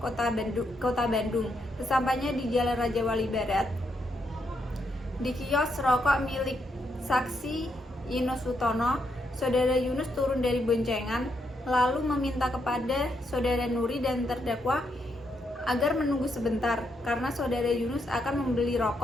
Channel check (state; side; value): normal; both; correlation 0.79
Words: Kota Bandung. Sesampainya di Jalan Raja Wali Barat, di kios rokok milik saksi Ino Sutono, Saudara Yunus turun dari boncengan lalu meminta kepada Saudara Nuri dan terdakwa agar menunggu sebentar karena Saudara Yunus akan membeli